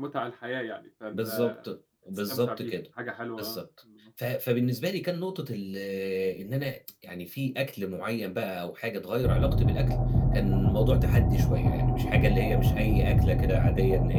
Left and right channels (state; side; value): identical; both; correlation 1.00